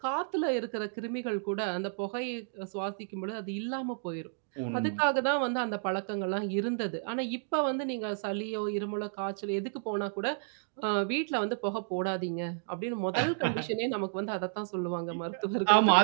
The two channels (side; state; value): left; silent; digital silence